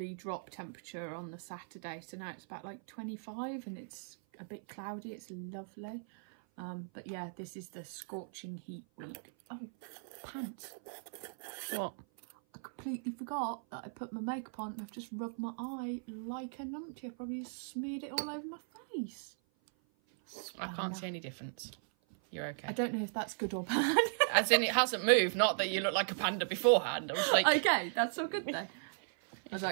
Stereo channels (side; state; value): left; silent; 53 dB below the other